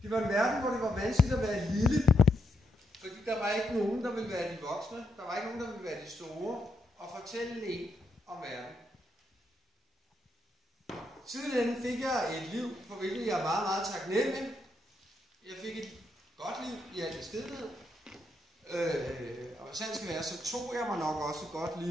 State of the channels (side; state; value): both; normal; correlation 0.80